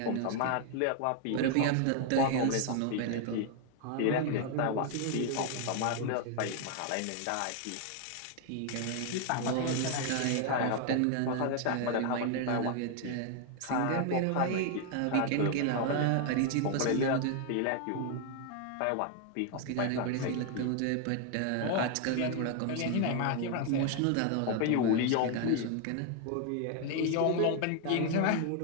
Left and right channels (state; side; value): different; both; correlation 0.00